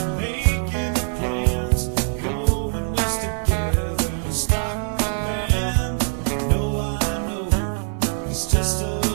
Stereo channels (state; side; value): silent; left; 57 dB below the other